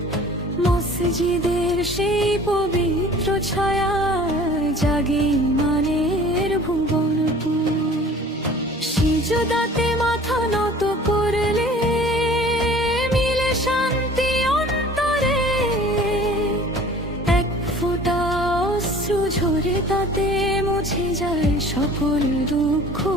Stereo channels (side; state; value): both; normal; correlation 0.47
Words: মসজিদের সেই পবিত্র ছায়ায় জাগে ঈমানের ভুবনপুর। সিজদাতে মাথা নত করলে মিলে শান্তি অন্তরে। এক ফোঁটা অশ্রু ঝরে তাতে মুছে যায় সকল দুঃখ